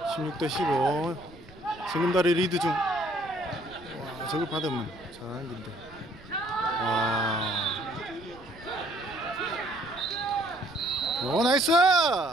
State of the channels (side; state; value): right; noise; rumble, 22 dB below the sound